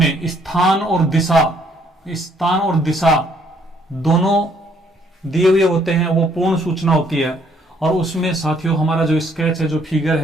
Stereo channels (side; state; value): both; normal; correlation 0.66